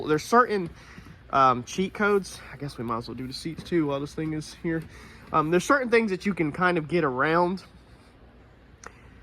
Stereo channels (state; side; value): identical; both; correlation 1.00